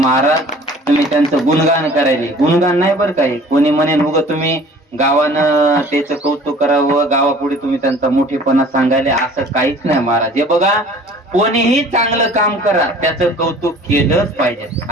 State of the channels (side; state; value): both; normal; correlation 0.49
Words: तुम्ही त्यांचं गुणगान करायले, गुणगान नाही बरं काय. कोणी म्हणेल उग तुम्ही गावानं त्याचं कौतुक करावं, गावापुढे तुम्ही त्यांचा मोठेपणा सांगायले, असं काहीच नाही महाराज. हे बघा, कोणीही चांगलं काम करा त्याचं कौतुक केलंच पाहिजे.